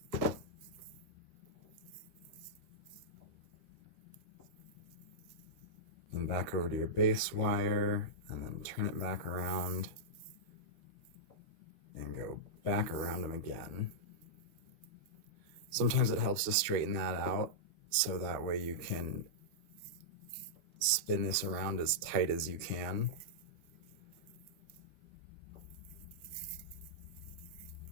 And back over to your base wire, and then turn it back around and go back around them again. Sometimes it helps to straighten that out so that way you can spin this around as tight as you can.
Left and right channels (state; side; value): late; left; 13 ms